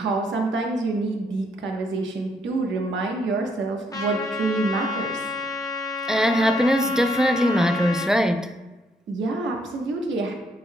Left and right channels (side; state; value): both; normal; correlation 0.72